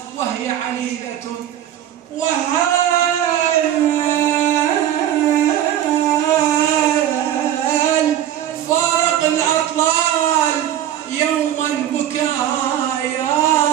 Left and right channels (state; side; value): quieter; left; 11.3 dB